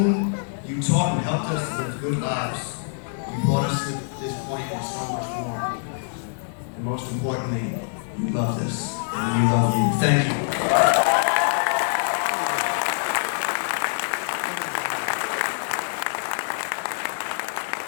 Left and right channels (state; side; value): silent; right; digital silence